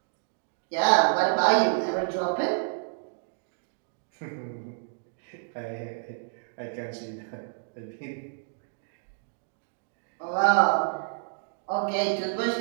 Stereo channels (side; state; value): left; silent; digital silence